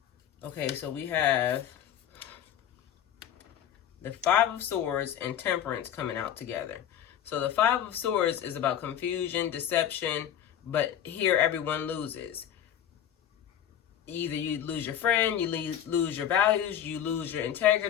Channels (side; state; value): right; quieter; 10.1 dB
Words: Okay, so we have the Five of Swords and Temperance coming out together. So the Five of Swords is about confusion, deception, but here everyone loses. Either you lose your friend, you lose your values, you lose your